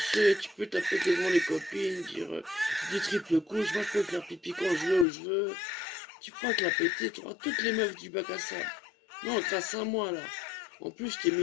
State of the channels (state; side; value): drops out; right; at 5.1 s